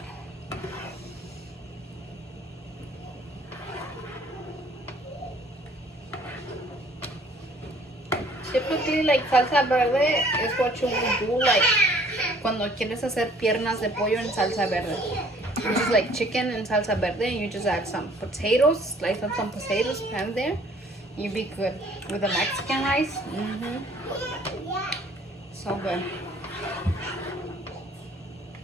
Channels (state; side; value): normal; both; correlation 0.57